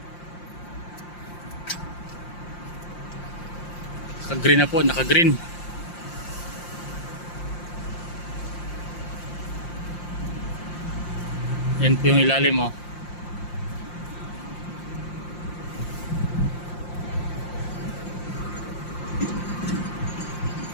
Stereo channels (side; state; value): right; late; 5.7 ms